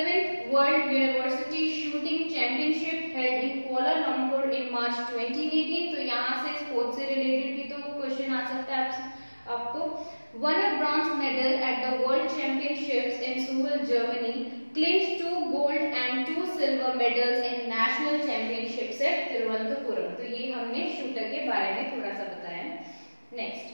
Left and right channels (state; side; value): inverted; both; correlation -1.00